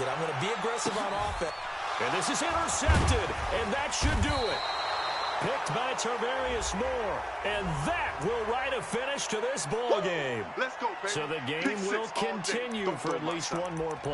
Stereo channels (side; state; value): both; identical; correlation 1.00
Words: that I'm going to be aggressive on offense. And this is intercepted, and that should do it. Picked by Tarvarius Moore, and that will write a finish to this ball game. Let's go, baby. So the game will continue for at least one more